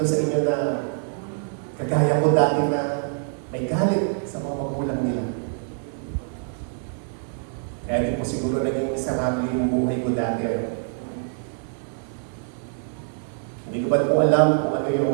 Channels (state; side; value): silent; left; 62 dB below the other